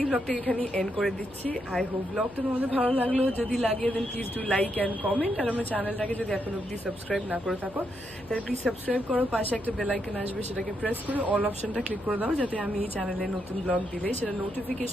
ব্লগটা এখানেই এন্ড করে দিচ্ছি। আই হোপ ব্লগটা তোমাদের ভালো লাগলো। যদি লাগে then please do like and comment. আর আমার চ্যানেলটাকে যদি এখন অব্দি সাবস্ক্রাইব না করে থাকো তাহলে প্লিজ সাবস্ক্রাইব করো। পাশে একটা বেল আইকন আসবে, সেটাকে প্রেস করে অল অপশনটা ক্লিক করে দাও, যাতে আমি এই চ্যানেলে নতুন ব্লগ দিলে সেটা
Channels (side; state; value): left; noise; hum, 22 dB below the sound